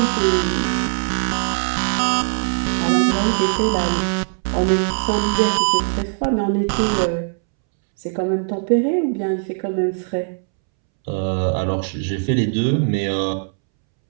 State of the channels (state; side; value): silent; left; 66 dB below the other